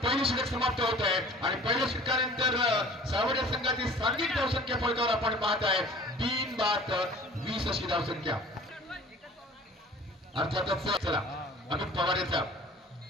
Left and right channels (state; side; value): normal; both; correlation 0.46